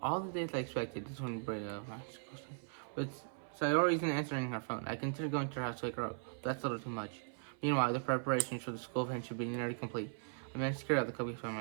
All the days I expected. This one bring up but Sayori isn't answering her phone. I consider going to her house to wake her up. That's a little too much. Meanwhile, the preparations for the school event should be nearly complete. I managed to carry out the cookies by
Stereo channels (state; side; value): silent; left; 52 dB below the other